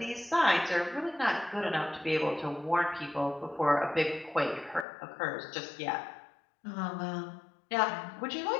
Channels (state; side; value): drops out; right; at 4.9 s